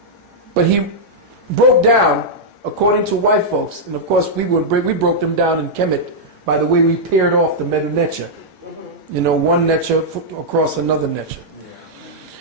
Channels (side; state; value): left; late; 2.2 ms